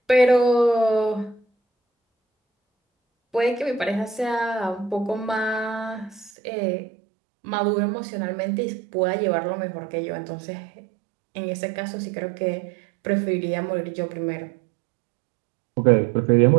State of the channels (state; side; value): drops out; left; at 6.3 s